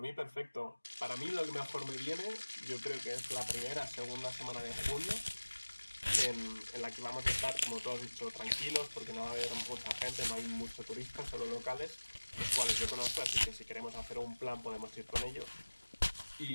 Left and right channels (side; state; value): both; inverted; correlation -1.00